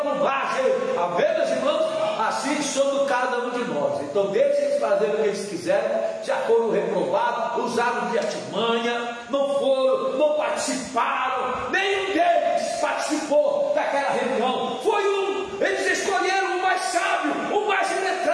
Amém, meus irmãos? Assim somos cada um de nós. Então deixem eles fazerem o que eles quiserem. Já foram reprovados, usaram de artimanha, não foram, não participaram participaram, nenhum deles participou daquela reunião. Foi eles escolheram o mais sábio, o mais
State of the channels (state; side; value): identical; both; correlation 1.00